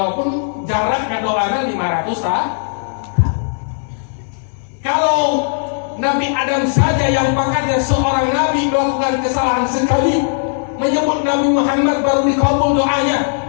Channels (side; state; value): right; silent; digital silence